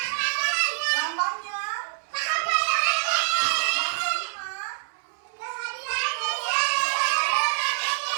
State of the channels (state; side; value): silent; left; 61 dB below the other